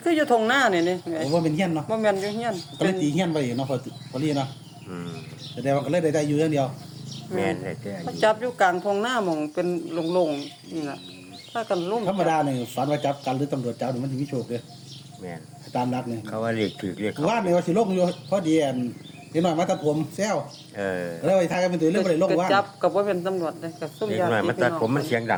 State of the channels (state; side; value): identical; both; correlation 1.00